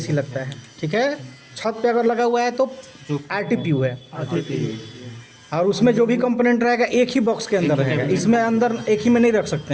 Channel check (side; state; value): both; identical; correlation 1.00